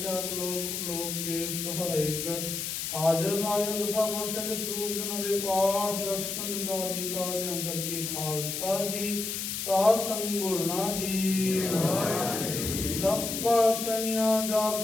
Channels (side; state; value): left; noise; hiss, 3 dB below the sound